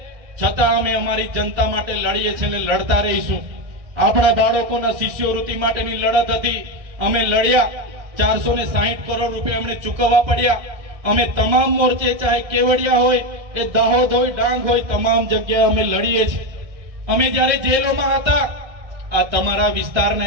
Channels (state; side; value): late; left; 1.6 ms